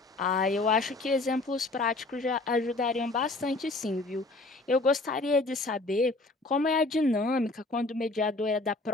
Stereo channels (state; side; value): quieter; right; 3.1 dB